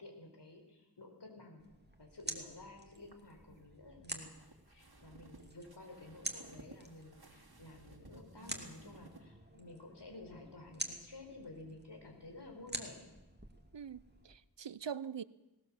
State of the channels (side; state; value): both; normal; correlation 0.03